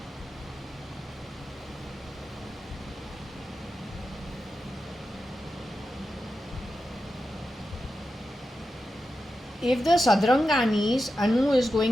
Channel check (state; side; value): normal; both; correlation 0.90